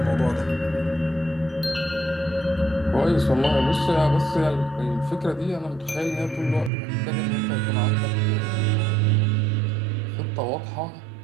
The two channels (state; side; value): drops out; left; at 6.7 s